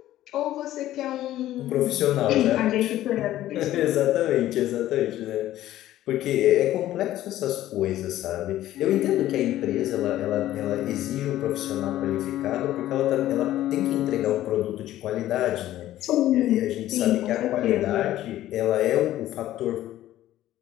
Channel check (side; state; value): right; quieter; 13.8 dB